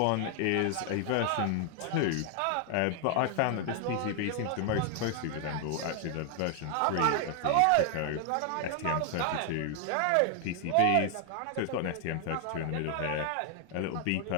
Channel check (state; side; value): different; both; correlation 0.00